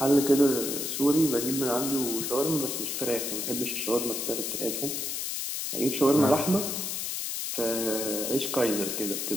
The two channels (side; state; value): left; noise; hiss, 3 dB below the sound